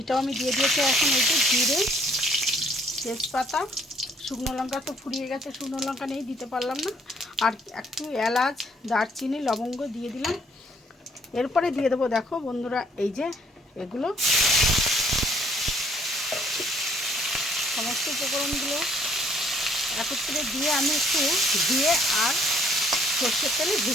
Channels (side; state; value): both; normal; correlation 0.63